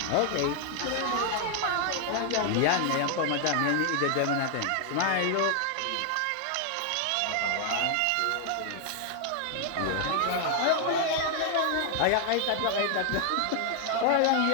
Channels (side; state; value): both; different; correlation 0.00